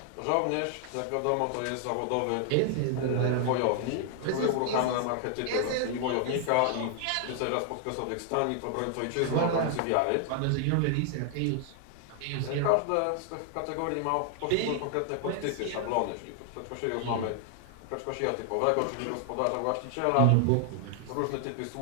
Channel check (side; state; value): both; different; correlation 0.00